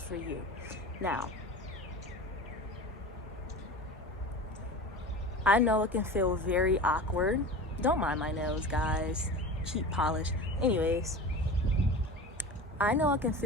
for you. Now, I know it can feel very awkward. Don't mind my nails, guys. Cheap polish. Anyways, I know it can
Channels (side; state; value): both; normal; correlation 0.33